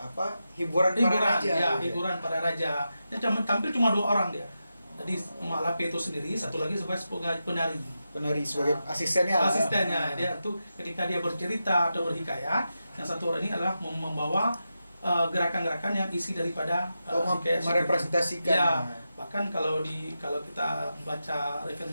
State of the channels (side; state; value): both; inverted; correlation -0.89